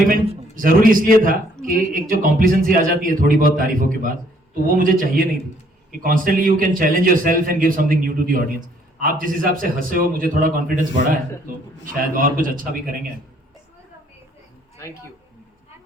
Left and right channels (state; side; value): normal; both; correlation 0.64